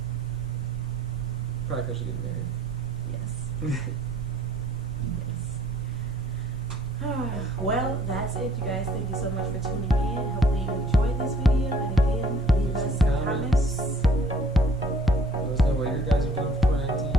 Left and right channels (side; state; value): both; normal; correlation 0.58